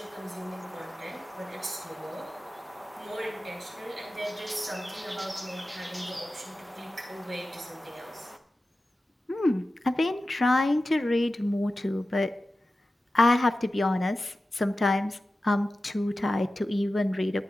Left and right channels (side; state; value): both; normal; correlation 0.94